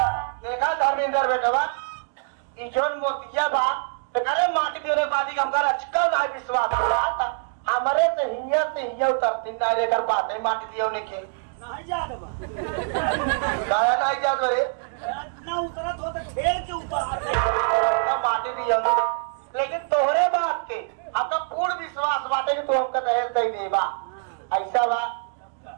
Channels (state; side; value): silent; left; digital silence